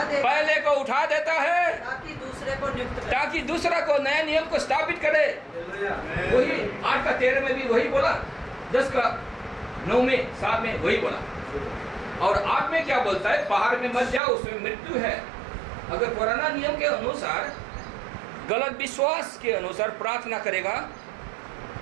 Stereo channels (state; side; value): drops out; left; at 14.2 s